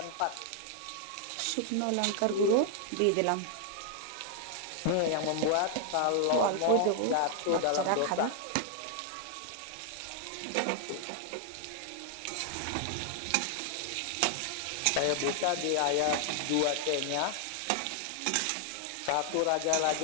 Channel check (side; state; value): both; different; correlation 0.00